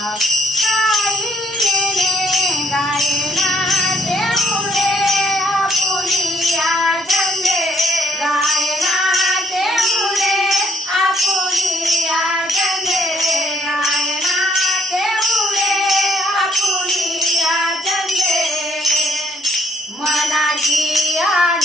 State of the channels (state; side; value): normal; both; correlation 0.68